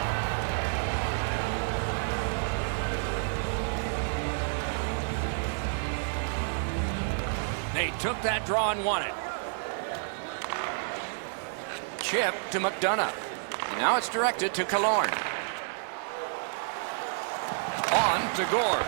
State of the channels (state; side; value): silent; left; digital silence